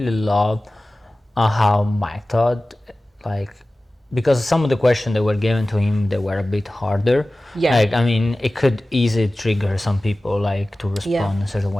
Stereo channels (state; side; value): normal; both; correlation 0.97